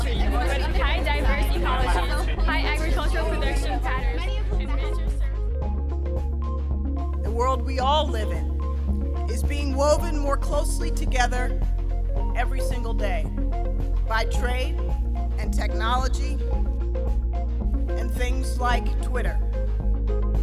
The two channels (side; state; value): both; identical; correlation 1.00